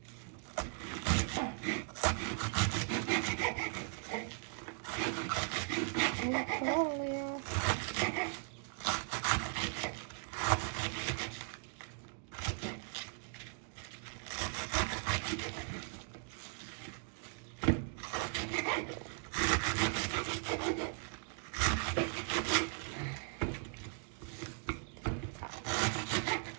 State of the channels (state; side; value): silent; left; 52 dB below the other